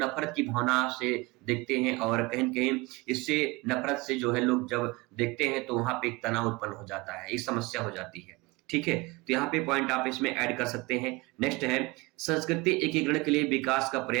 की भावना से देखते हैं और कहीं न कहीं इससे नफरत से जो है लोग जब देखते हैं तो वहां पे एक तनाव उत्पन्न हो जाता है, एक समस्या हो जाती है। ठीक है, तो यहाँ पे पॉइंट आप इसमें ऐड कर सकते हैं। नेक्स्ट है संस्कृति एकीकरण के लिए विकास का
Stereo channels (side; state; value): left; quieter; 23.5 dB